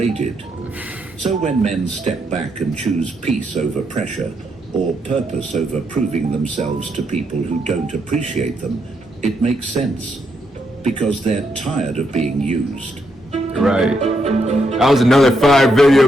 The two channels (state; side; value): normal; both; correlation 0.79